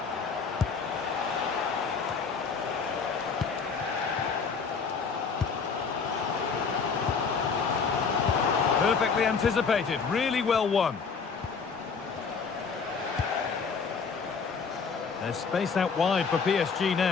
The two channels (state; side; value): quieter; right; 5.5 dB